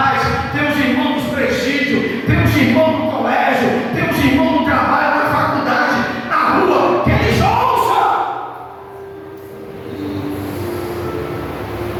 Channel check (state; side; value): identical; both; correlation 1.00